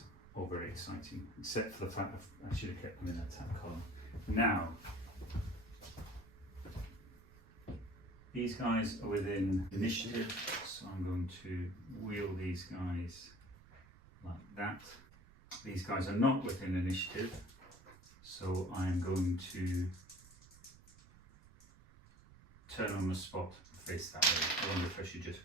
all very exciting, except for the fact that I should have kept them in that attack column. Now, these guys are within initiative, so I'm going to wheel these guys like that. These guys are not within initiative, so I'm going to turn on the spot and face that way. I wonder if I should just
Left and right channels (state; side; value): noise; right; rumble, 22 dB below the sound